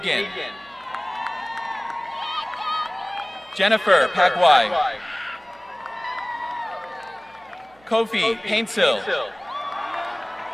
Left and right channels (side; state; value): right; noise; hum, 30 dB below the sound